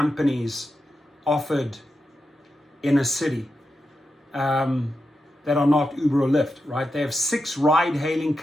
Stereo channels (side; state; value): both; normal; correlation 0.88